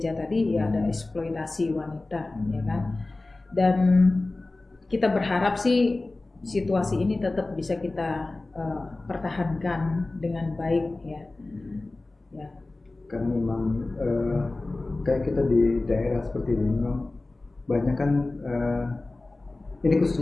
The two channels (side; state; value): right; quieter; 3.1 dB